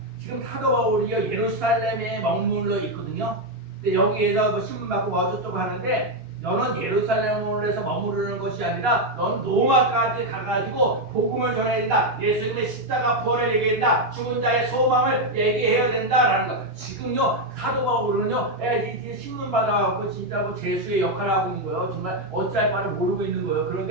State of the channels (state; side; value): late; left; 2.8 ms